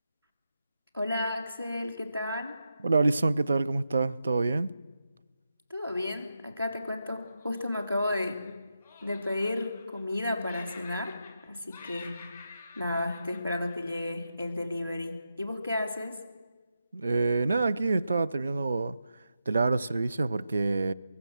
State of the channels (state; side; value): inverted; both; correlation -0.87